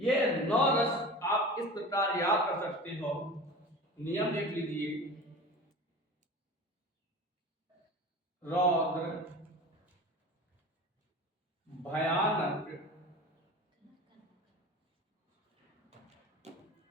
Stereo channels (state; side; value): normal; both; correlation 0.35